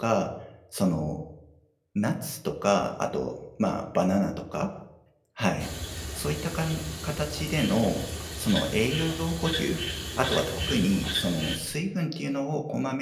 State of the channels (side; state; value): both; identical; correlation 1.00